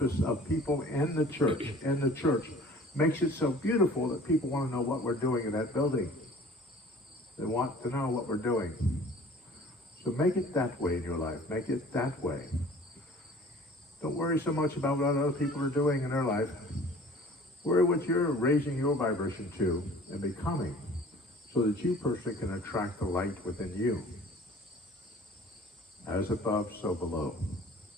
of people in the church makes it so beautiful that people want to know what we're doing in that building. They want to know what we're doing. So make it that way in your life. Make it that way. Don't worry so much about what other people are doing in their life. Worry what you're raising your vibration to and becoming, so that you personally can attract the light within you. As above, so below.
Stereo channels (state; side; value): normal; both; correlation 0.48